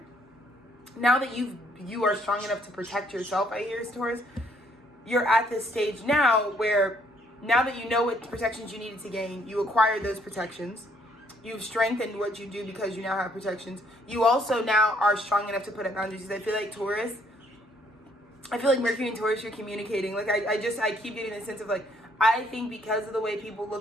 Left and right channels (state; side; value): normal; both; correlation 0.67